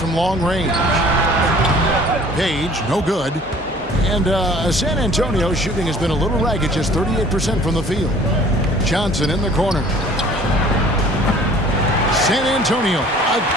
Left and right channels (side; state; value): both; normal; correlation 0.51